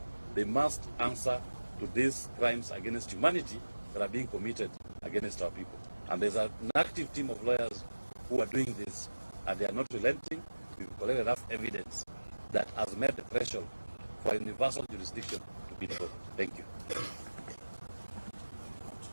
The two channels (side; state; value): both; inverted; correlation -1.00